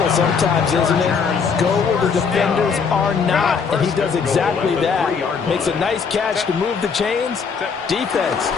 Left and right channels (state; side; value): quieter; right; 5.8 dB